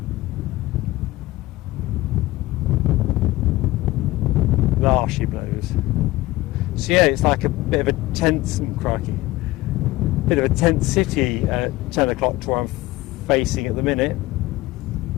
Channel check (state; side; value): quieter; right; 18.4 dB